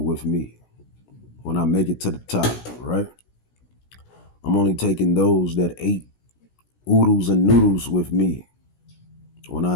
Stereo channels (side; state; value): right; late; 17 ms